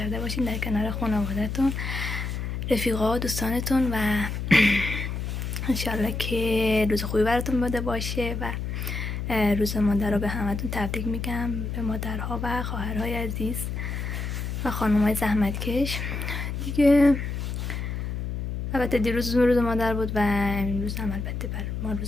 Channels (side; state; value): left; noise; hum, 4 dB below the sound